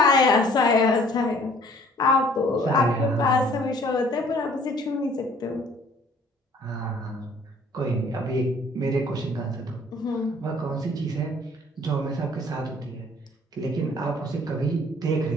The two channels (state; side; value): normal; both; correlation 0.56